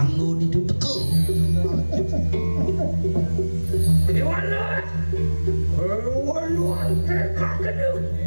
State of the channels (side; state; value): both; inverted; correlation -1.00